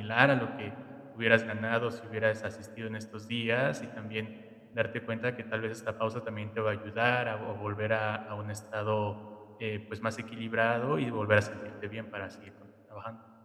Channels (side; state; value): both; identical; correlation 1.00